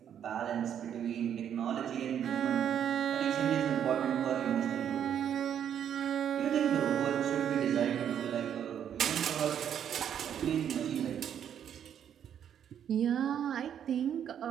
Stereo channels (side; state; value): left; quieter; 9.2 dB